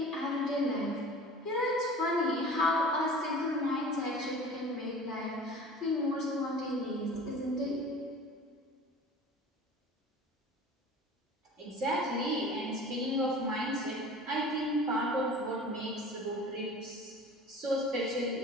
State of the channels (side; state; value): both; normal; correlation 0.41